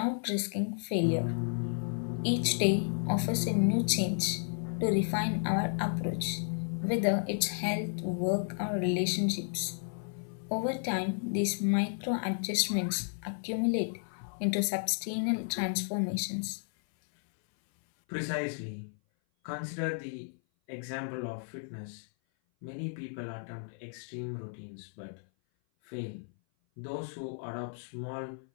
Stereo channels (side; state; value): right; silent; 56 dB below the other